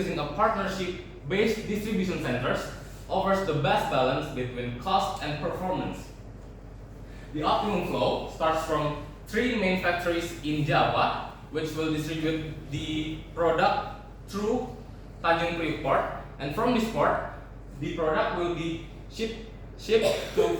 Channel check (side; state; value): both; identical; correlation 1.00